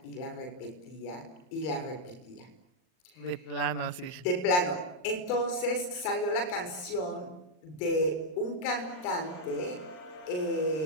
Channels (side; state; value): right; late; 39 ms